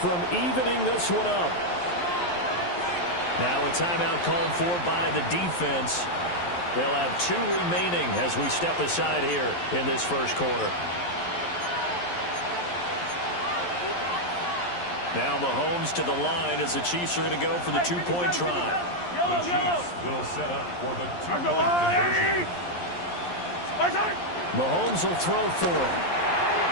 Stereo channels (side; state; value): right; late; 11 ms